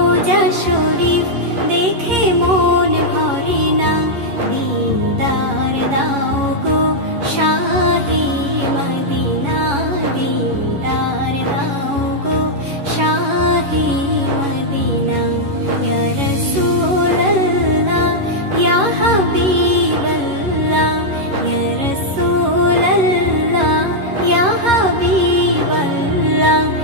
শরীফ দেখে মন ভরে না। দিদার দাও গো শাহে মদিনা, দিদার দাও গো শাহে মদিনা। ইয়া রাসূলাল্লাহ ইয়া হাবিবাল্লাহ,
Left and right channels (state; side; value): late; left; 11 ms